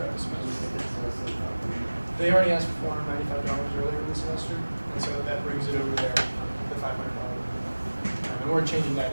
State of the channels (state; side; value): inverted; both; correlation -1.00